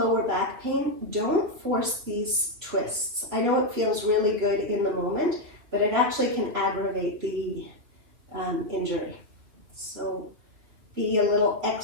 back pain, don't force these twists. I know it feels really good in the moment, but it actually can aggravate the injury. So be a little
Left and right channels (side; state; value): left; late; 3.1 ms